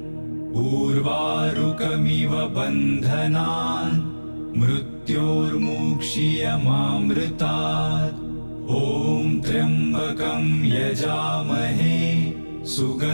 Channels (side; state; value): both; inverted; correlation -1.00